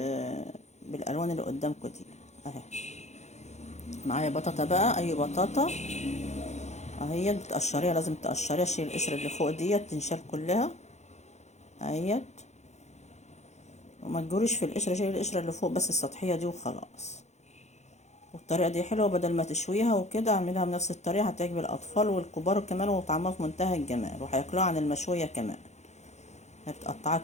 بالألوان اللي قدامكم دي اهي. معايا بطاطا بقى، أي بطاطا اهيت بتقشريها، لازم تقشريها، شيل القشرة اللي فوق ديت تنشال كلها اهيت، وما تجوريش في القشرة، شيل القشرة اللي فوق بس السطحية دي وخلاص. والطريقة دي حلوة، بدل ما تشويها وكده اعملها بنفس الطريقة، هتعجب الأطفال والكبار كمان، وطعمها في منتهى الجمال، وهياكلوها عن المشوية كمان. بتقطعها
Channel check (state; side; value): late; right; 0.33 ms